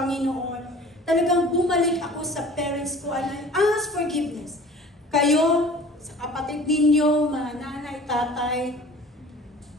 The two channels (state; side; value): normal; both; correlation 0.45